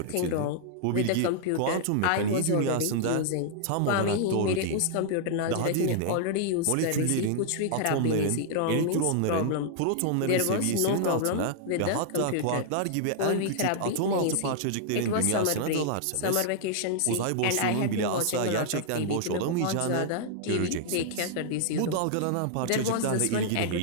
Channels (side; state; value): both; different; correlation -0.01